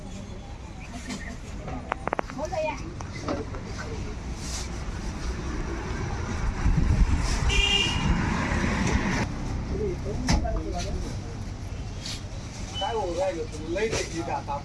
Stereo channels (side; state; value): both; identical; correlation 1.00